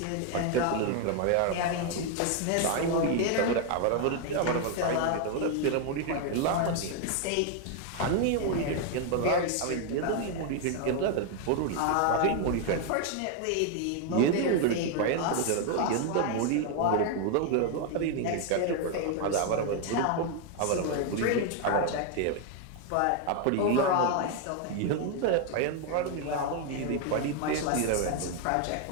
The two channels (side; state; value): both; different; correlation 0.00